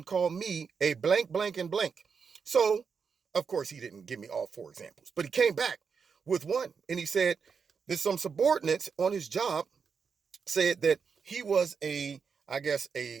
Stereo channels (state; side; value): quieter; left; 5.9 dB